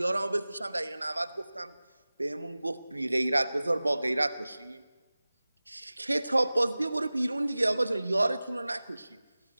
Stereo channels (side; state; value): both; inverted; correlation -0.98